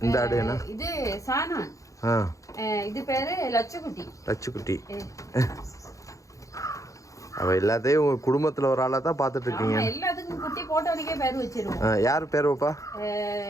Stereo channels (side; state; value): right; late; 0.16 ms